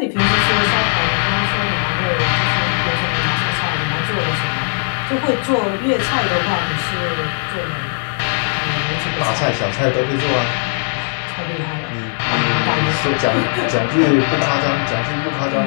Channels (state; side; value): silent; right; 67 dB below the other